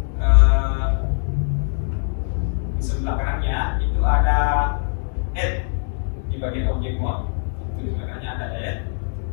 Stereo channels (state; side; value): silent; right; 58 dB below the other